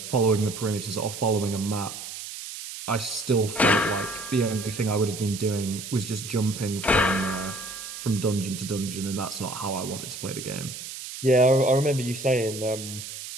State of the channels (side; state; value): right; noise; hiss, 10 dB below the sound